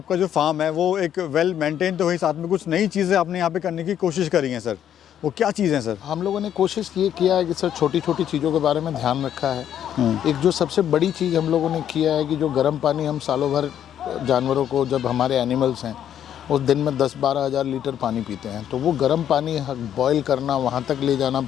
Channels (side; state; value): right; quieter; 10.0 dB